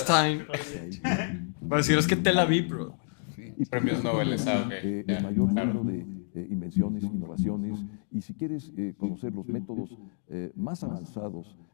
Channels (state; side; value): silent; right; digital silence